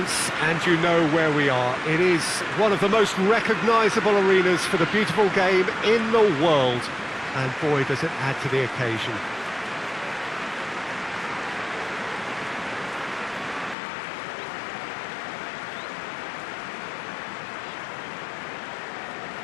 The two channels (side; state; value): right; drops out; at 13.8 s